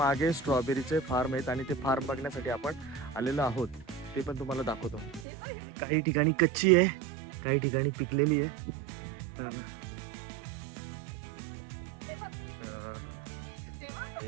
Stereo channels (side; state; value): left; drops out; at 5.2 s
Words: स्ट्रॉबेरीचे फार्म आहेत आणि ते फार्म बघण्यासाठी आपण आलेलो आहोत. ते पण तुम्हाला दाखवतो. काही ठिकाणी कच्ची आहे, काही ठिकाणी पिकलेली आहे.